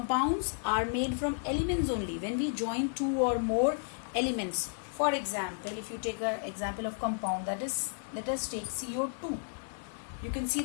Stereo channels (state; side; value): silent; right; 56 dB below the other